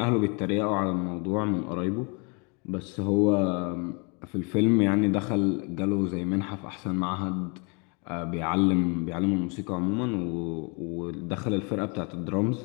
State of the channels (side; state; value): right; quieter; 33.4 dB